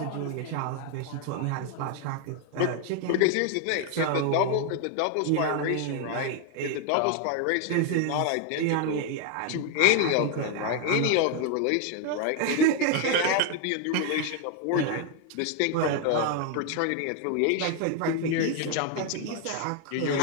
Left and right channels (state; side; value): different; both; correlation 0.01